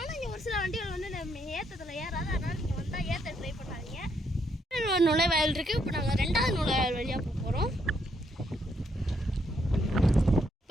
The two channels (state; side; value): normal; both; correlation 0.74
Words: இங்கே ஒரு சில வண்டிகள் வந்து நம்ம ஏற்றத்தில் ஏறாது. அதனால் நீங்கள் வந்தால் ஏற்ற ட்ரை பண்ணாதீங்க. நுழைவாயில் இருக்குது. இப்போ நாங்கள் 2வது நுழைவாயில் வழியாக போக போகிறோம்.